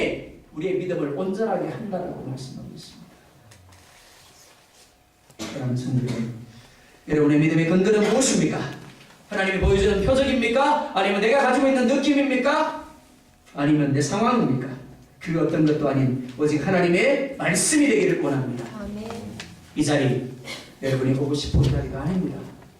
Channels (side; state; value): both; identical; correlation 1.00